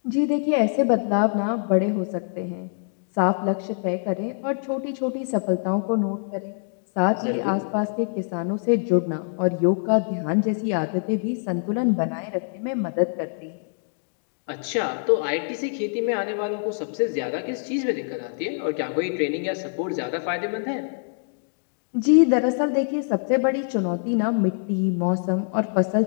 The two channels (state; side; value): silent; right; digital silence